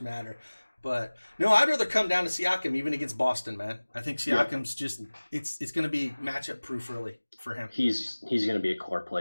matter. But no, I'd rather come down to Siakam even against Boston, man. I think Siakam's just it's going to be matchup proof really for him. He's going to be a core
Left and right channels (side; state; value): both; inverted; correlation -1.00